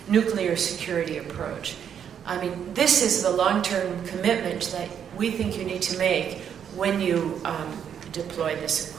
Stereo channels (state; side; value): quieter; left; 8.4 dB